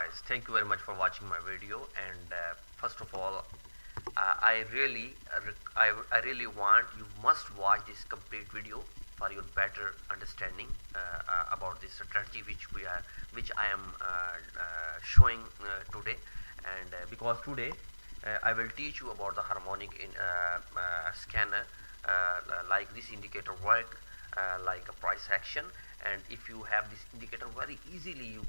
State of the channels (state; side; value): inverted; both; correlation -1.00